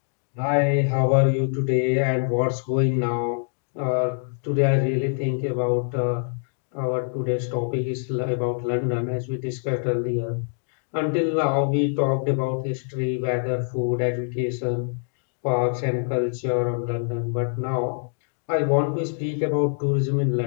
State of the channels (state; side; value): silent; right; 62 dB below the other